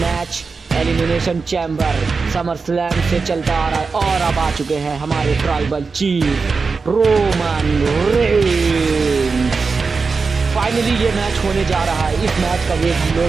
elimination chamber summer slam से चलता आ रहा है। और अब आ चुके हैं हमारे tribal chief Roman Reigns. Finally ये मैच होने जा रहा है। इस मैच का वेट हम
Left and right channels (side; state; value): left; quieter; 4.6 dB